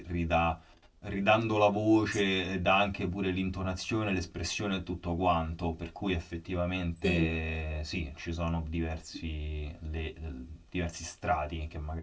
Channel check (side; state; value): both; identical; correlation 1.00